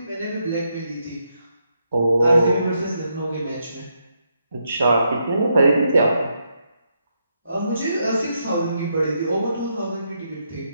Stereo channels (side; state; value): both; inverted; correlation -0.80